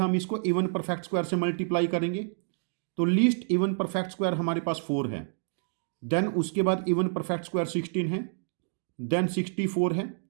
इसको इवन परफेक्ट स्क्वायर से मल्टीप्लाई करेंगे। तो लीस्ट इवन परफेक्ट स्क्वायर हमारे पास 4 है, देन उसके बाद इवन परफेक्ट स्क्वायर 16 है, देन 64 है,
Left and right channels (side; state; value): left; silent; digital silence